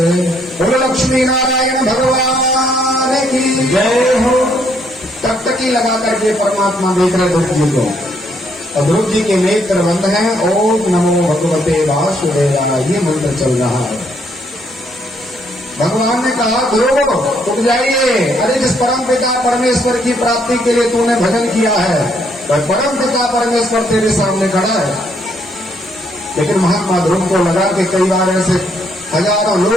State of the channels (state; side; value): normal; both; correlation 0.70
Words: बोलो लक्ष्मी नारायण भगवान की जय हो। टकटकी लगा करके परमात्मा देख रहे ध्रुव जी को, और ध्रुव जी के नेत्र बंद हैं। ओम नमो भगवते वासुदेवाय, ये मंत्र चल रहा है। भगवान ने कहा ध्रुव उठ जाइए, अरे जिस परम पिता परमेश्वर की प्राप्ति के लिए तूने भजन किया है, वह परम पिता परमेश्वर तेरे सामने खड़ा है। लेकिन महात्मा ध्रुव को लगा कि कई बार ऐसे हजारों